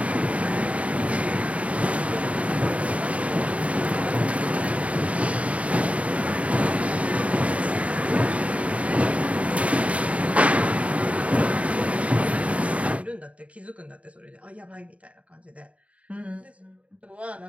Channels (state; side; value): late; left; 0.065 ms